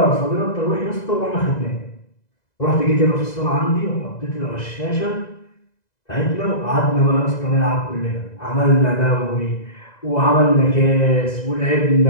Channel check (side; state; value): right; late; 2.0 ms